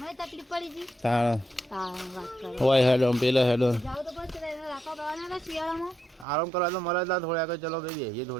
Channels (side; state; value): left; drops out; at 6.2 s